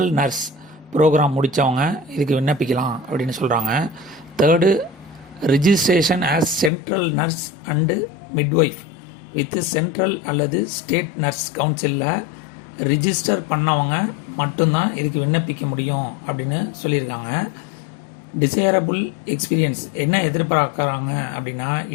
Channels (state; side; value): drops out; right; at 6.7 s